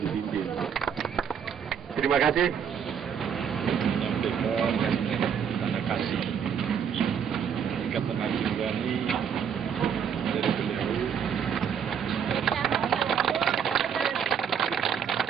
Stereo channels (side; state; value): left; quieter; 7.7 dB